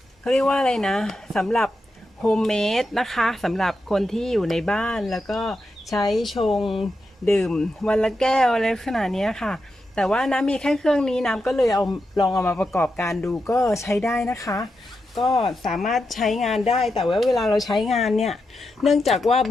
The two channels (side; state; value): both; normal; correlation 0.87